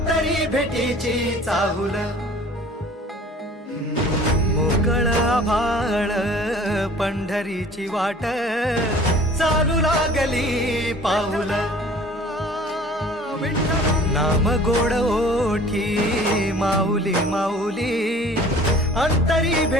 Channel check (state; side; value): normal; both; correlation 0.48